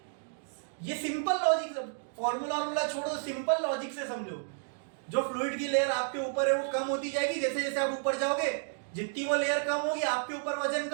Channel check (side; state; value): left; silent; digital silence